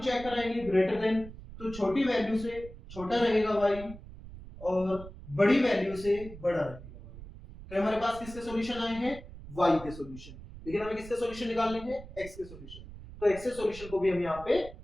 चेक कराएंगे ग्रेटर देन, तो छोटी वैल्यू से छोटा रहेगा y और बड़ी वैल्यू से बड़ा रहेगा y। तो हमारे पास किसके सॉल्यूशन आए हैं, y के सॉल्यूशन, लेकिन हमें किसके सॉल्यूशन निकालने हैं, x के सॉल्यूशन। तो x के सॉल्यूशन को भी हम यहाँ पे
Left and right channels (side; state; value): right; noise; rumble, 15 dB below the sound